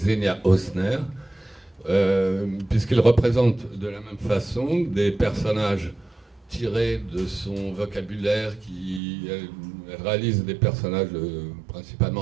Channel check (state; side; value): drops out; left; at 9.0 s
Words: Osner, puisqu'il représente de la même façon des personnages tiré de son vocabulaire, qui réalise des personnages